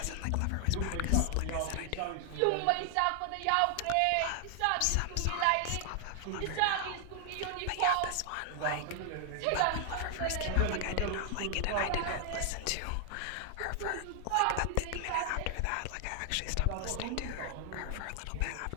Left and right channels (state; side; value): different; both; correlation 0.00